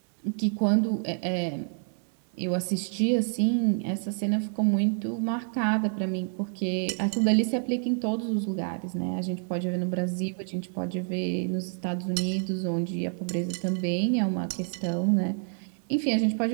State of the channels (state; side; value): silent; left; 59 dB below the other